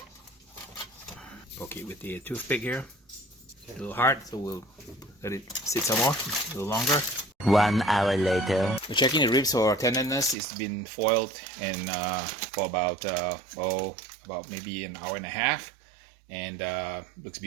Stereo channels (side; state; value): left; drops out; at 10.4 s